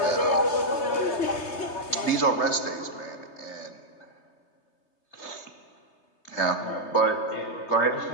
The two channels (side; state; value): right; late; 3.3 ms